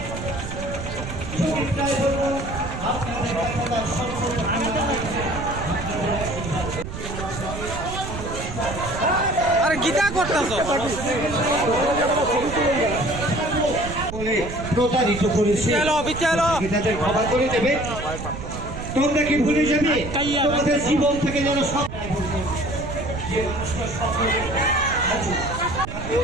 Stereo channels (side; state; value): right; noise; rumble, 8 dB below the sound